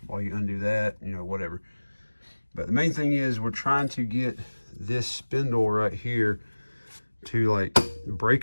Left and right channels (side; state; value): both; inverted; correlation -1.00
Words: while you undo that, you know, whatever. But the main thing is we're trying to get this spindle right here to like